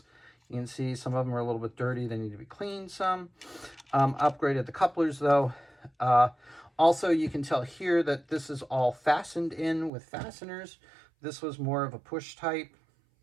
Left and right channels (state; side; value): drops out; left; at 9.9 s